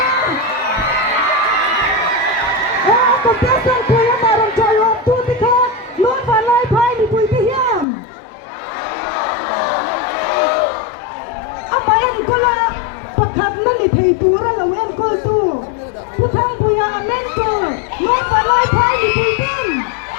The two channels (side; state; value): right; drops out; at 7.9 s